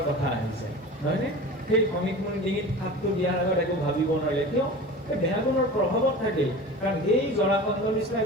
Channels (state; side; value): normal; both; correlation 0.35